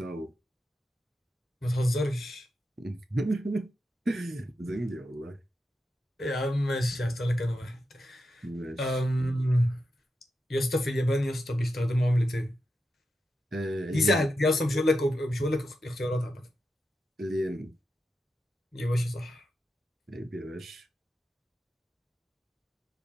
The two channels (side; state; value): both; normal; correlation 0.88